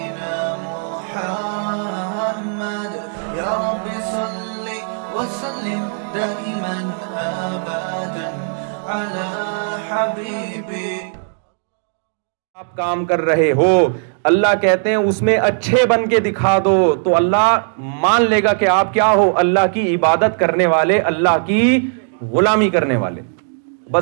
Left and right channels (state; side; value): silent; left; 60 dB below the other